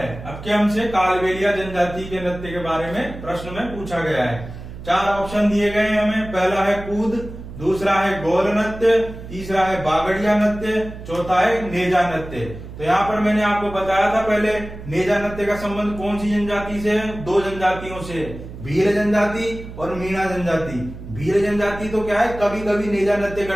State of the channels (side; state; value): right; noise; hum, 13 dB below the sound